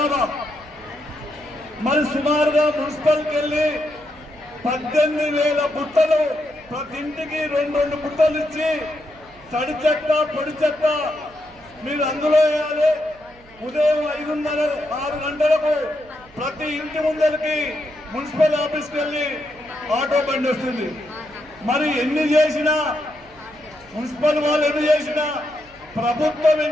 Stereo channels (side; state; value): right; noise; hum, 26 dB below the sound